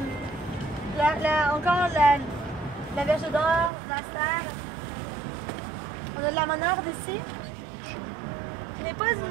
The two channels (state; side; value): drops out; left; at 3.7 s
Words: Encore la verge d'or, l'astère. On a de la monarde ici. Ce n'est pas